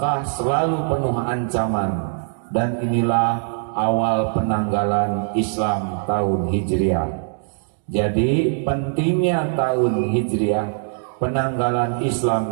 selalu penuh ancaman, dan inilah awal penanggalan Islam tahun Hijriah. Jadi pentingnya tahun Hijriah, penanggalan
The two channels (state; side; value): silent; left; digital silence